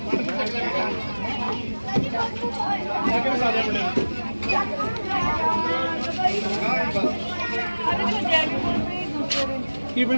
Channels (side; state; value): both; inverted; correlation -1.00